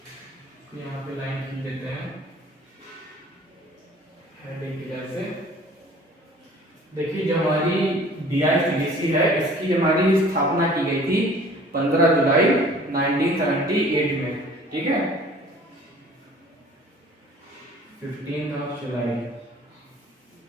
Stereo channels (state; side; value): normal; both; correlation 0.50